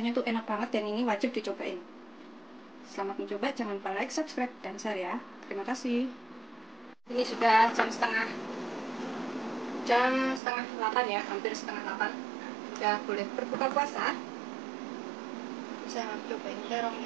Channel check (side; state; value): left; drops out; at 10.4 s